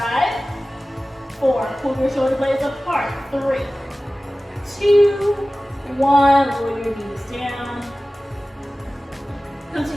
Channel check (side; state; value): both; normal; correlation 0.97